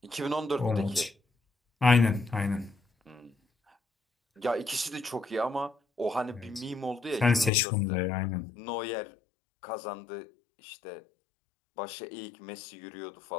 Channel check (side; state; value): right; drops out; at 7.5 s